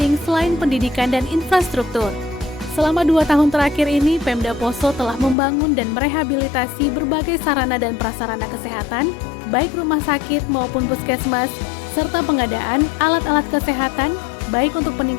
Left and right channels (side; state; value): right; drops out; at 5.4 s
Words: selain pendidikan dan infrastruktur. Selama 2 tahun terakhir ini, Pemda Poso telah membangun dan merehabilitasi berbagai sarana dan prasarana kesehatan, baik rumah sakit maupun puskesmas, serta pengadaan alat-alat kesehatan, baik untuk